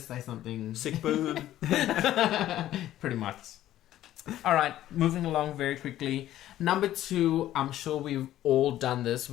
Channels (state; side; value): quieter; right; 13.3 dB